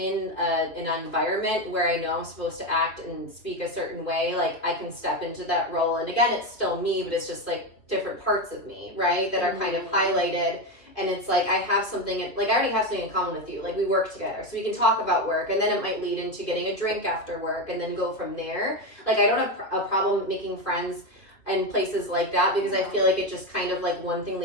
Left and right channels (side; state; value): right; late; 2.3 ms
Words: environment where I know I'm supposed to act and speak a certain way, like I can step into that role. And again, it's still me, but it's just like different parts of me, right? That are kind of highlighted. And it's like I have something, like I already have something in common with you. Like we work together, so we can talk about work, and then it might lead into getting a drink after work, and then go from there. Like I don't have a problem making friends in places like that, because I feel like it just kind of like one thing